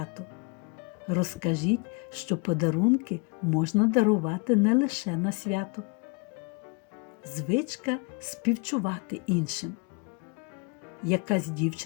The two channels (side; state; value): right; quieter; 31.9 dB